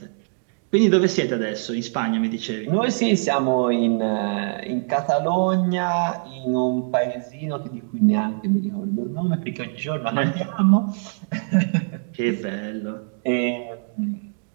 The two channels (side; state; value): left; silent; 59 dB below the other